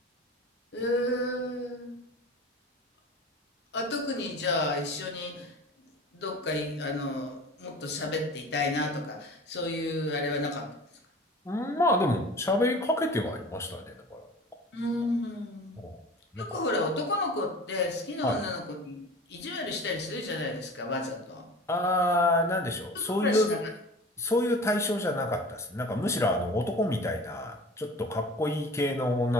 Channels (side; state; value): both; normal; correlation 0.39